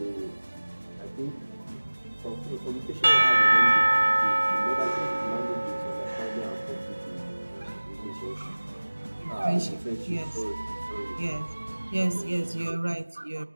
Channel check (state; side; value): inverted; both; correlation -1.00